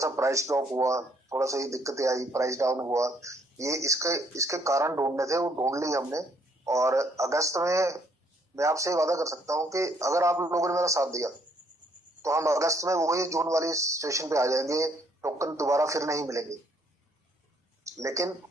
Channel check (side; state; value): both; normal; correlation 0.67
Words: प्राइस ड्रॉप हुआ, थोड़ा सा ये दिक्कतें आई, प्राइस डाउन हुआ, ये इसके इसके कारण ढूंढने थे, वो ढूंढ लिए हमने। और अगस्त में मैं आपसे वादा कर सकता हूँ कि अगर आप लोगों ने मेरा साथ दिया तो हम अगस्त में वही जून वाली सिचुएशन पे आ जाएंगे। टोकन दोबारा फिर नहीं मिलेंगे, लेकिन